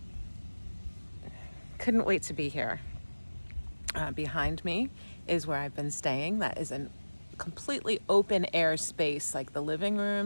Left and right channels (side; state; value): both; inverted; correlation -1.00